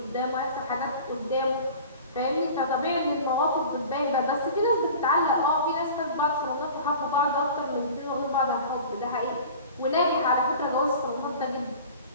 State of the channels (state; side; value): inverted; both; correlation -0.41